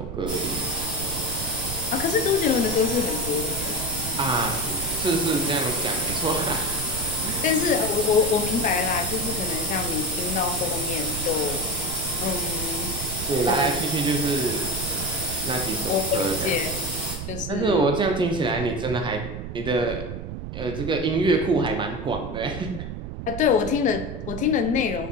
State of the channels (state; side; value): noise; right; rumble, 7 dB below the sound